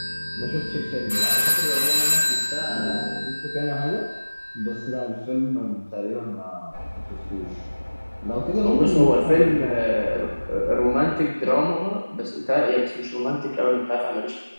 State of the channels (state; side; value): inverted; both; correlation -1.00